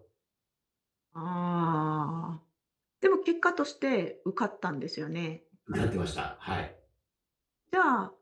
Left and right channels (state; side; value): identical; both; correlation 1.00